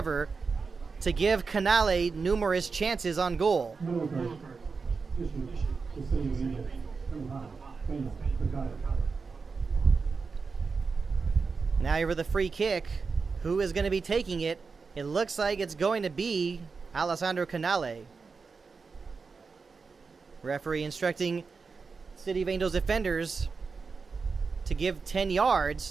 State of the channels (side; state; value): left; quieter; 4.8 dB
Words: to give Canale numerous chances on goal. Now here with the free kick. Who is going to be taking it? It looks like it's going to be Alessandro Canale. Referee instructing City of Angels defenders to give 10